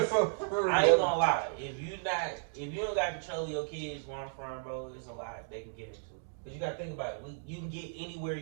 ain't gonna lie. If you don't got control of your kids where I'm from, bro, it's a lot they can get into. Cause you gotta think about it. You can get anywhere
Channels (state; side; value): silent; left; digital silence